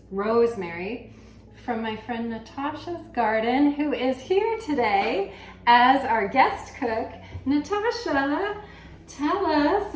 rosemary from my friend Natasha's garden, who is here today as our guest cook. Natasha, tell us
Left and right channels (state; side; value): identical; both; correlation 1.00